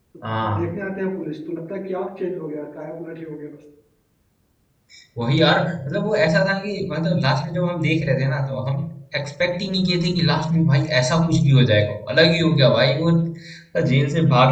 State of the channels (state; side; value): identical; both; correlation 1.00